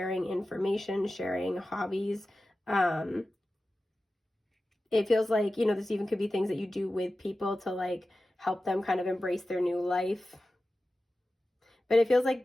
information, sharing hobbies. It feels like, you know, this even could be things that you do with people to like help them kind of embrace their new life. But it feels like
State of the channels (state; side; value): normal; both; correlation 0.94